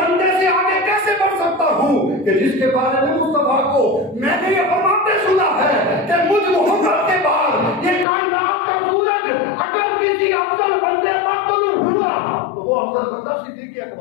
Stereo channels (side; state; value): right; drops out; at 8.1 s